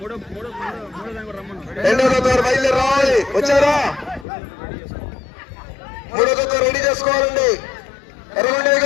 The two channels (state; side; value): drops out; right; at 4.2 s